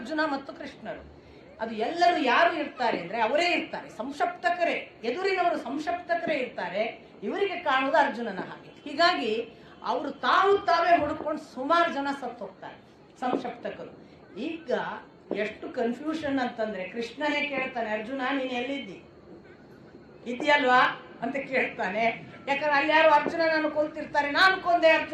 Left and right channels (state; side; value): identical; both; correlation 1.00